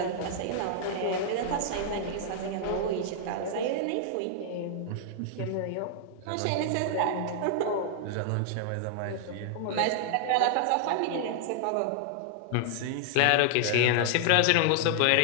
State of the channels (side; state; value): both; different; correlation -0.01